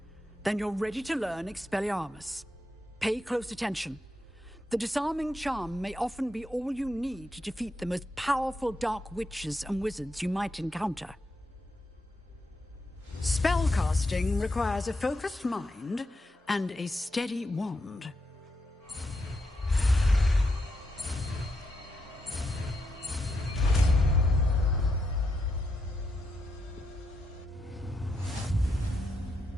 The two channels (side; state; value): both; normal; correlation 0.83